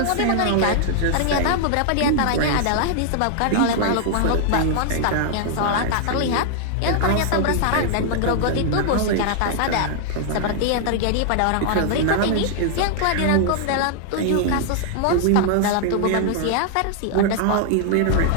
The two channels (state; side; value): different; both; correlation 0.00